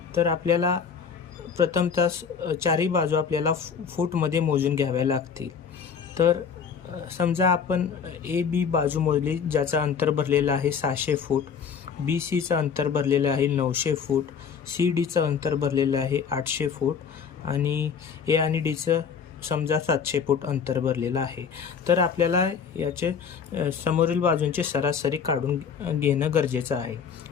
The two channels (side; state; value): right; quieter; 6.6 dB